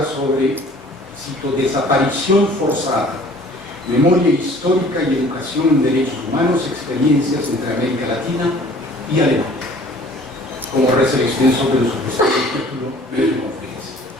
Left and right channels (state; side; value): normal; both; correlation 0.51